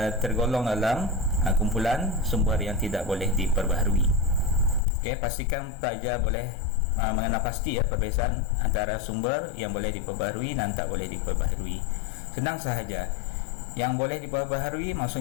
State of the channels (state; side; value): drops out; right; at 4.8 s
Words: tergolong dalam kumpulan sumber yang tidak boleh diperbaharui. Pastikan pelajar boleh mengenal pasti perbezaan antara sumber yang boleh diperbaharui dan tak boleh diperbaharui. Senang sahaja. Yang boleh diperbaharui